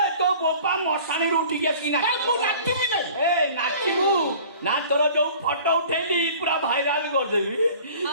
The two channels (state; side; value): inverted; both; correlation -0.46